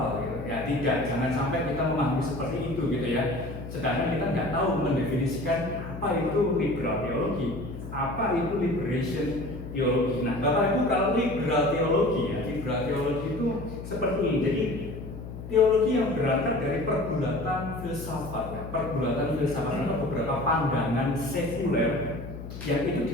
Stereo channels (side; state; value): left; noise; hum, 10 dB below the sound